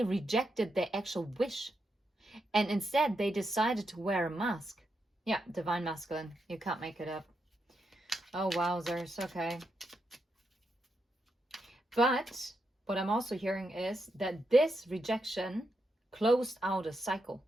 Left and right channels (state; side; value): normal; both; correlation 0.84